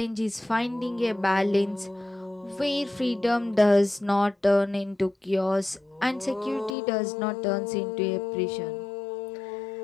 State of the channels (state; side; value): drops out; right; at 6.8 s